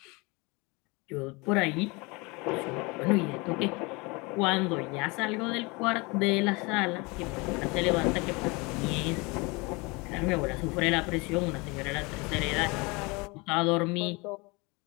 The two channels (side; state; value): right; quieter; 26.7 dB